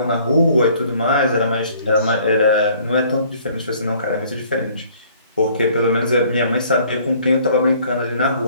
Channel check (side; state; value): both; inverted; correlation -0.58